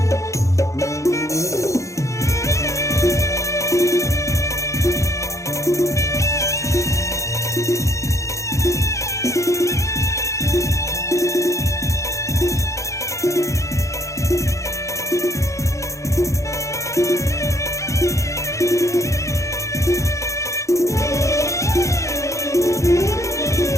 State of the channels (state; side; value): late; right; 0.15 ms